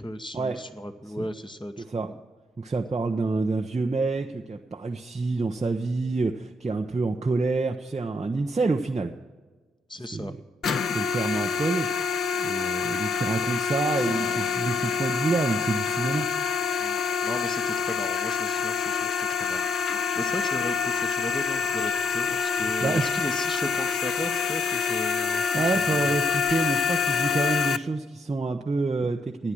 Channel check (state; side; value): normal; both; correlation 0.74